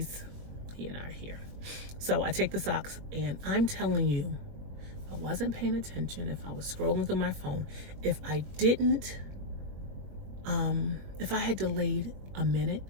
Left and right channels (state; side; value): late; left; 21 ms